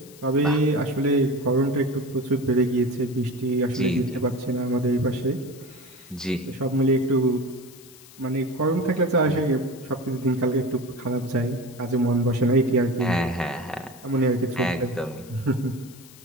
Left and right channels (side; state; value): left; noise; hiss, 21 dB below the sound